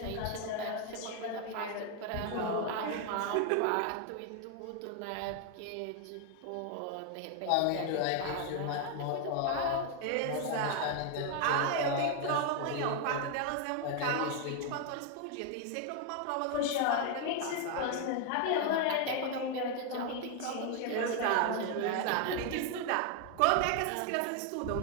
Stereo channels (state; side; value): different; both; correlation 0.01